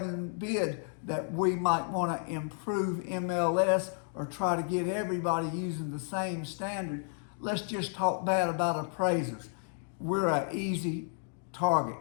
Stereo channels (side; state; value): right; silent; 56 dB below the other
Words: forbid that we might want to improve MLS or try to get everybody using the same standard. Let's just talk bad about appraisers. We're an easy target.